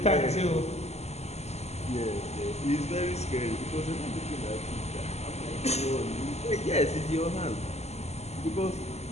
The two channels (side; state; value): right; late; 0.31 ms